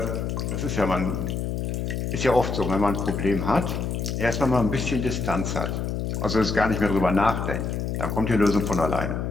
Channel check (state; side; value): noise; left; hum, 2 dB below the sound